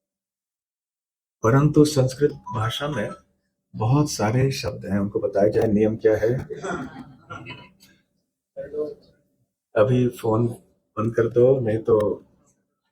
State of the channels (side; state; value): both; identical; correlation 1.00